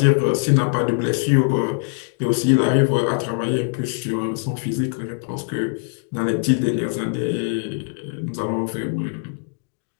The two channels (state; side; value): silent; right; 64 dB below the other